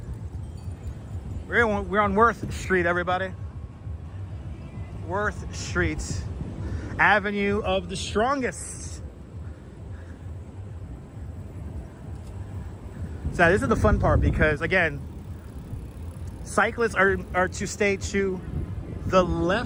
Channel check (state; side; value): identical; both; correlation 1.00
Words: We're on Worth Street, everybody. Worth Street. Avenue of the Strongest. So this is the fun part because, again, cyclists are to stay to the